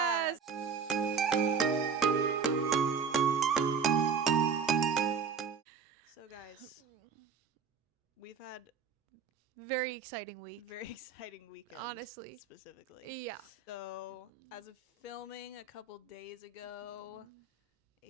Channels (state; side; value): quieter; left; 6.0 dB